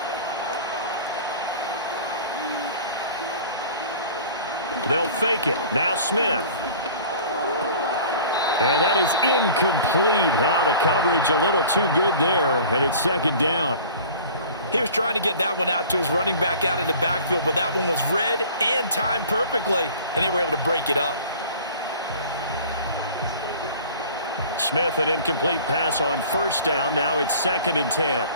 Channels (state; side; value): inverted; both; correlation -0.45